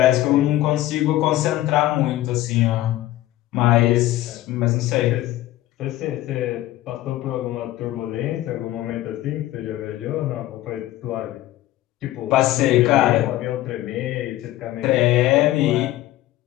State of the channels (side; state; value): right; quieter; 15.3 dB